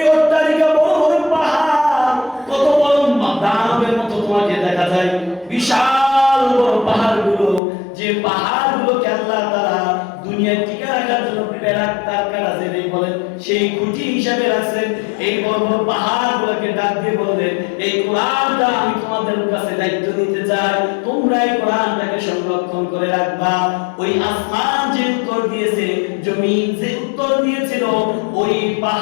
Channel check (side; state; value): right; drops out; at 7.6 s